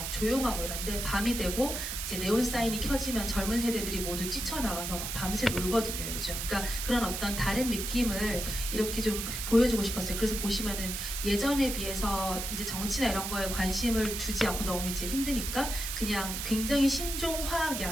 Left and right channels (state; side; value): noise; right; hiss, 4 dB below the sound